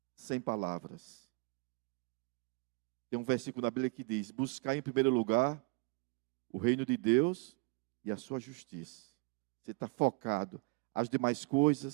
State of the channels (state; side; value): quieter; left; 30.7 dB